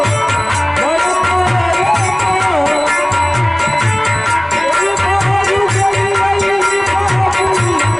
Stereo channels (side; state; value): right; noise; rumble, 27 dB below the sound